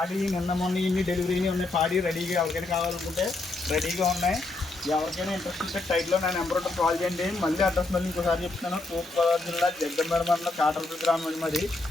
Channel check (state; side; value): quieter; right; 3.2 dB